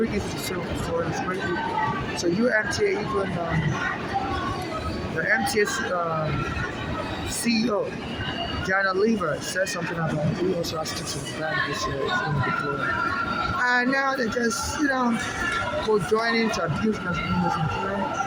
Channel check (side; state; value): both; identical; correlation 1.00